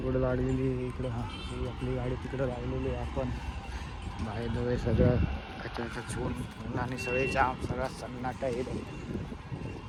कुठं लागलेली इकडं. हां, ही आपली गाडी तिकडं लागलेली आहे. आपण बाहेर दवे सगळं अचानक छून आणि सगळे जाम, सगळा सन्नाटा येतो.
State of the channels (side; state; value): both; identical; correlation 1.00